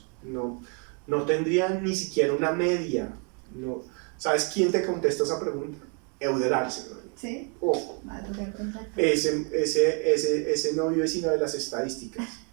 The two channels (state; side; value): quieter; left; 37.5 dB